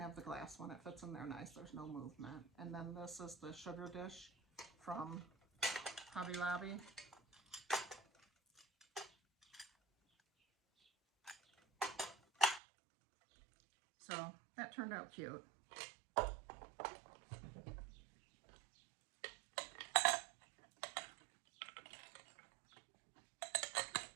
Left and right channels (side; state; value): left; drops out; at 12.6 s